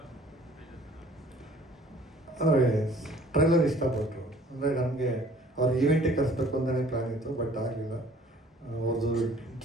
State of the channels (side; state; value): both; normal; correlation 0.54